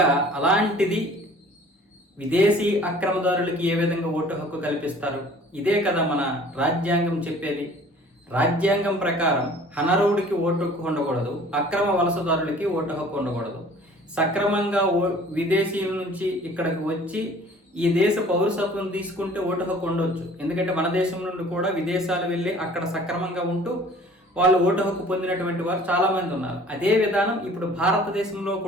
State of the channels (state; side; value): normal; both; correlation 0.50